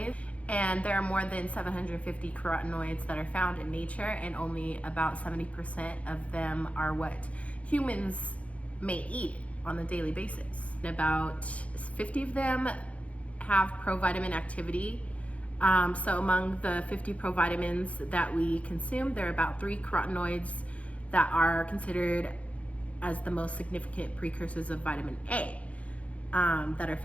and there are more than 750 carotenoids that are found in nature, and only about 70% of them are what humans may eat on a daily basis. About 50 of them have provitamin activity. So among the 50 provitamins that we consume, there are about 3 carotenoids that are considered as the most significant precursors of vitamin A that are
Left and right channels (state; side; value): late; right; 0.065 ms